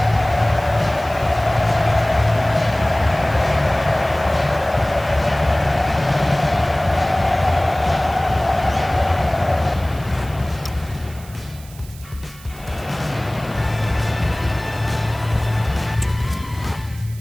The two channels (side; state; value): right; noise; hiss, 21 dB below the sound